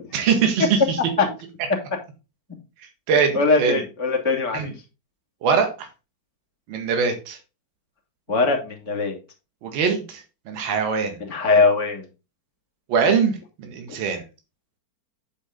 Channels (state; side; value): late; left; 4.4 ms